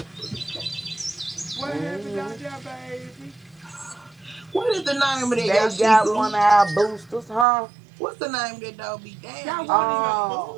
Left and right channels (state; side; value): drops out; left; at 7.5 s